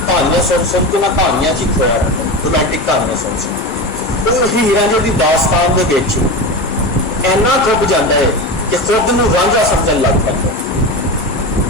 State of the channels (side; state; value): both; normal; correlation 0.23